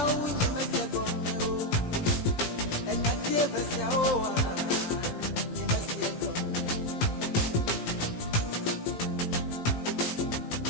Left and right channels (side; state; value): right; late; 17 ms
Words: unye mesia gonge o. Enya tie versia owa. Nye mesia gonge.